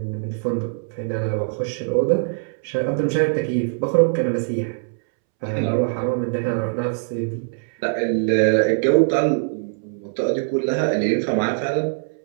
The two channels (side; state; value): left; silent; 64 dB below the other